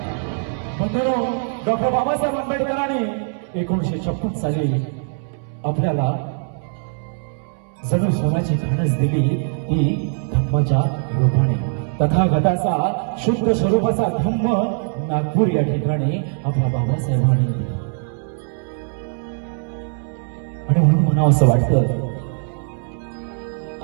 बंधुरो, डॉक्टर बाबासाहेब आंबेडकरांनी 1956 साली आपल्याला जणू सोन्याची खाणच दिली ती धम्माच्या रूपाने। तथागताचा शुद्ध स्वरूपाचा धम्म नागपूर या ठिकाणी आपल्या बाबासाहेबांनी दिला। आणि म्हणून म्हणावं असं वाटतं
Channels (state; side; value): silent; left; 65 dB below the other